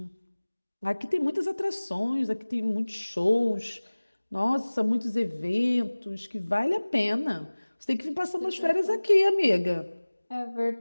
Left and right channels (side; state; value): both; inverted; correlation -1.00